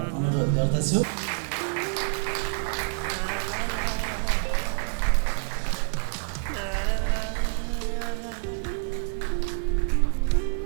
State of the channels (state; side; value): silent; left; 60 dB below the other